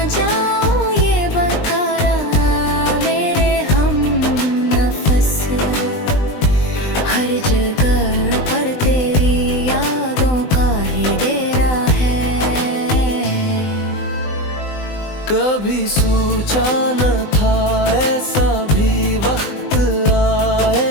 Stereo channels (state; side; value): late; right; 20 ms